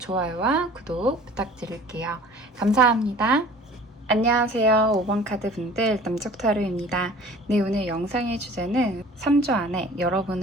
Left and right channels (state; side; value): normal; both; correlation 0.47